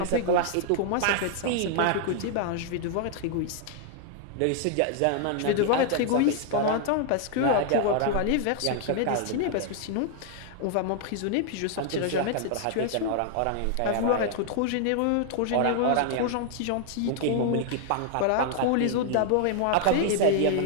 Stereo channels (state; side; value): different; both; correlation 0.00